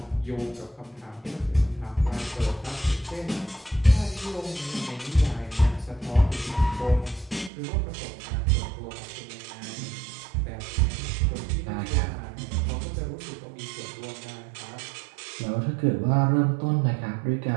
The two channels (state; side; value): drops out; left; at 7.5 s